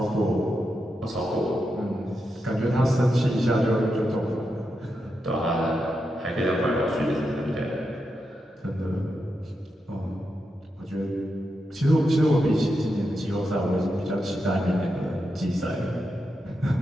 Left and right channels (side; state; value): both; normal; correlation 0.86